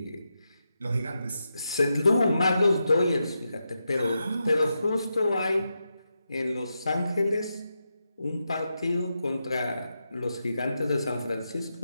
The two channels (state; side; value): inverted; both; correlation -0.87